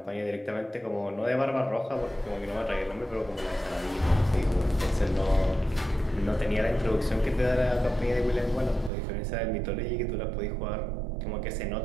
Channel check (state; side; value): drops out; left; at 8.9 s